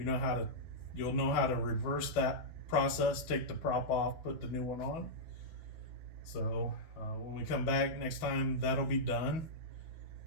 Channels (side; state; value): right; late; 12 ms